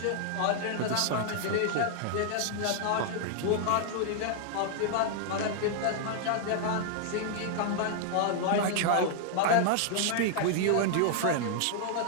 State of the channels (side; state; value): both; different; correlation 0.00